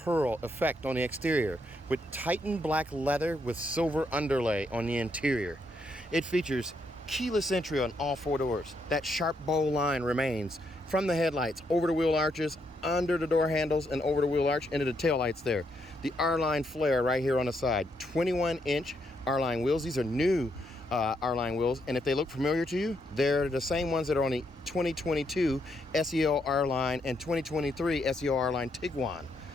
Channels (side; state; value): both; normal; correlation 0.77